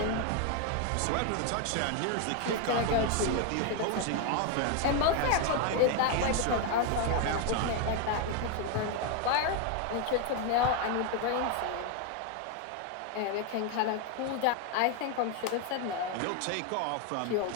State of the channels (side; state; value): both; different; correlation 0.01